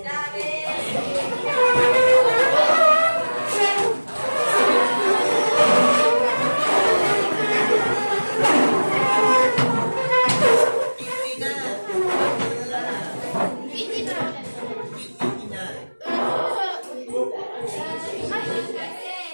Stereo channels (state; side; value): inverted; both; correlation -1.00